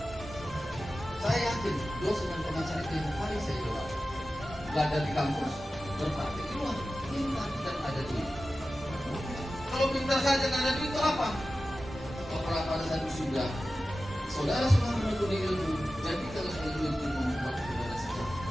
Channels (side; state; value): both; normal; correlation 0.94